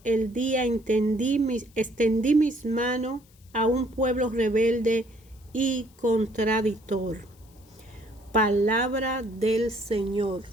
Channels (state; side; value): noise; left; hiss, 30 dB below the sound